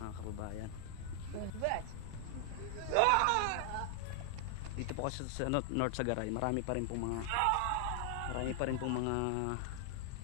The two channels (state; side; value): different; both; correlation 0.00